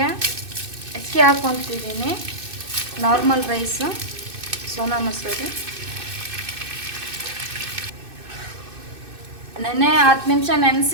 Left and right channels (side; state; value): left; late; 2.6 ms